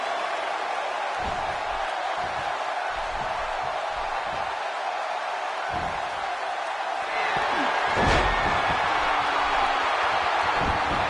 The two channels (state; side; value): identical; both; correlation 1.00